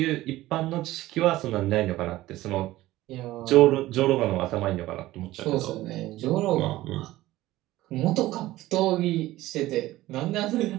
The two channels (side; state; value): left; quieter; 16.5 dB